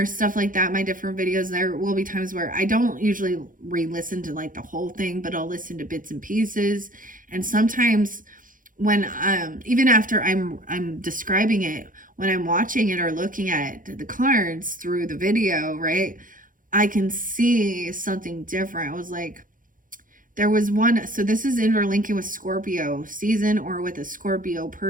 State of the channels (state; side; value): late; left; 0.39 ms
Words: stuff like that, my different videos, there will be times where I don't usually re-listen to like the whole thing, but I'll listen to bits and pieces. And sometimes when even after I'm describing it, when I'm watching it or looking at the cards through the video, right, I can see something different. I was like, there was one, so this is interlinking with Scorpio season or with a Scorpio